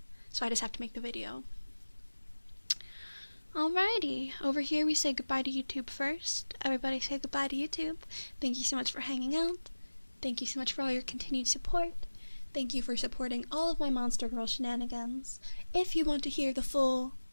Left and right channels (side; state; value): both; inverted; correlation -1.00